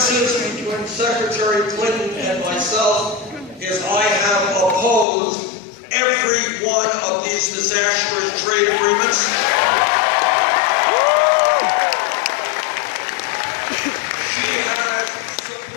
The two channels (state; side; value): drops out; right; at 5.1 s